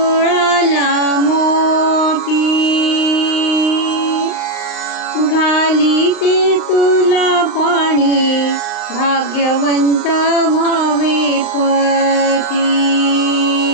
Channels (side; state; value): right; late; 39 ms